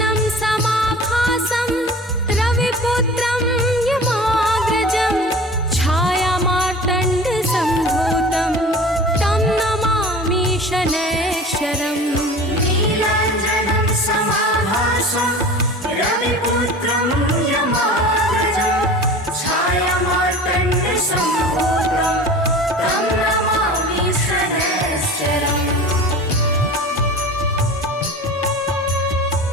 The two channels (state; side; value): normal; both; correlation 0.39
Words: समाभासं रविपुत्रं यमाग्रजं छायामार्तण्डसम्भूतं तं नमामि शनैश्चरम्। नीलाञ्जनं समाभासं रविपुत्रं यमाग्रजं छायामार्तण्डसम्भूतं तं नमामि शनैश्चरम्।